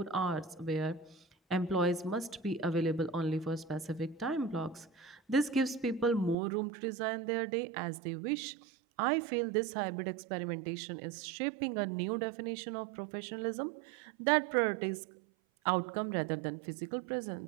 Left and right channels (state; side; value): drops out; left; at 6.4 s